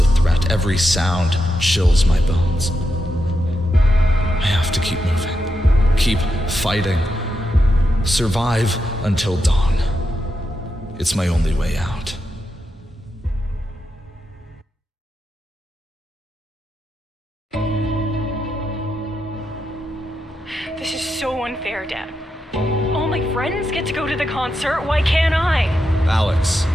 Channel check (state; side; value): normal; both; correlation 0.86